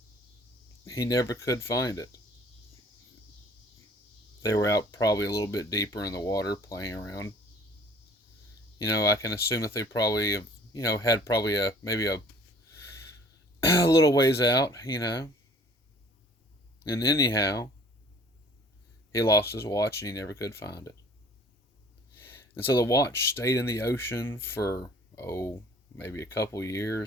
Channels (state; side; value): normal; both; correlation 0.52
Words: he never could find it. They were out probably a little bit deeper in the water playing around. I can assume that they probably have, had probably maybe a little ways out. And anyhow, he lost his watch and he never could find it. And so the watch stayed in the ocean for, maybe a couple